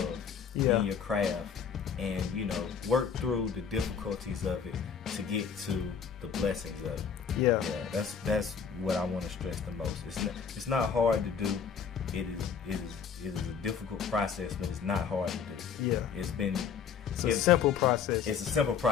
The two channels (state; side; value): quieter; right; 6.8 dB